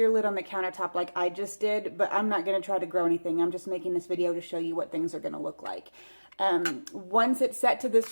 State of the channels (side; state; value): both; inverted; correlation -1.00